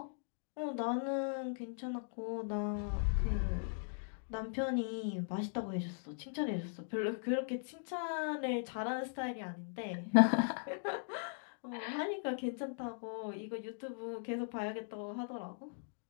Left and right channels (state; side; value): silent; right; digital silence